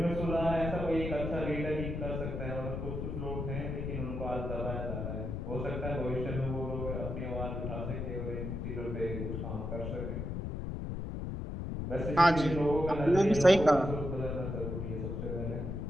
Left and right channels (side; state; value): left; noise; rumble, 4 dB below the sound